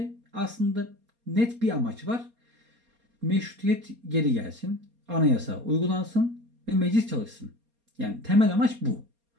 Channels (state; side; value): late; left; 4.3 ms